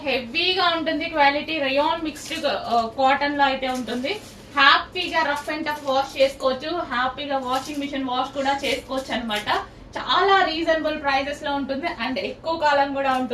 హెవీగా ఉంటుంది క్వాలిటీ, రేయాన్ మిక్స్డ్ కాటన్ లో అయితే ఉంటుంది. హ్యాపీగా రఫ్ అండ్ టఫ్ వాష్ చేసుకోవచ్చు, హ్యాపీగా వాషింగ్ మిషన్ వాష్ కూడా చేసుకోవచ్చు అనమాట. చాలా రీజనబుల్ ప్రైజెస్ లో ఉంటుంది అండ్ ఎక్కువ కాలం కూడా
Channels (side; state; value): both; identical; correlation 1.00